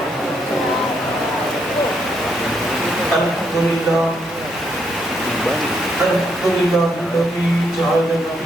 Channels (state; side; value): normal; both; correlation 0.76